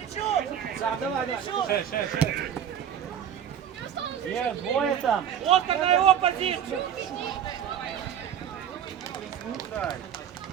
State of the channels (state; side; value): quieter; left; 9.2 dB